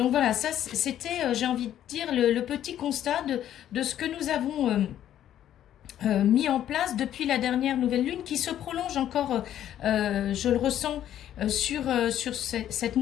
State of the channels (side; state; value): right; quieter; 11.3 dB